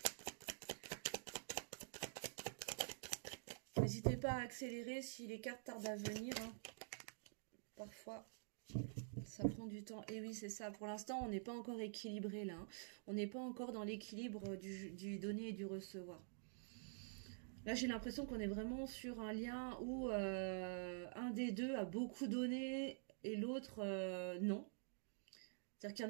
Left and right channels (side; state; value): left; silent; digital silence